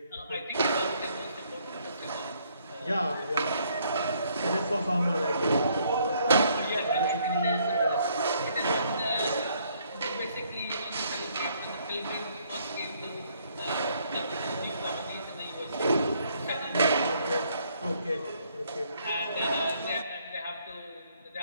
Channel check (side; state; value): both; inverted; correlation -0.67